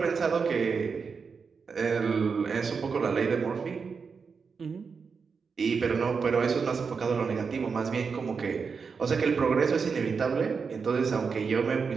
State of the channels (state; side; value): quieter; left; 5.4 dB